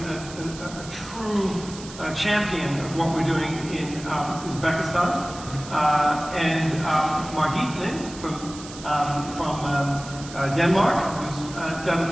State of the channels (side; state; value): right; noise; hiss, 15 dB below the sound